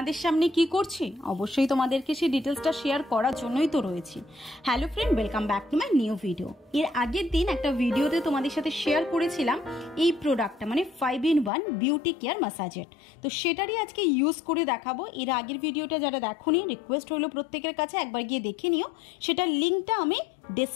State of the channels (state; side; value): drops out; right; at 11.5 s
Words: সামনে কি করছি? অবশ্যই তোমাদেরকে সেই ডিটেলসটা শেয়ার করার জন্যই তো রয়েছি। Hello friend, welcome back to my new video. এর আগের দিন একটা ভিডিওতে তোমাদের সাথে শেয়ার করেছিলাম এই প্রোডাক্টটা, মানে 5-in-1 বিউটি কেয়ার ম্যাসাজের। তো সেটারই আজকে ইউজ করে দেখাবো। এর আগের ভিডিওটা যারা দেখোনি, রিকোয়েস্ট হলো প্রত্যেকের কাছে একবার গিয়ে দেখে নিও। সেটার লিঙ্কটা আমি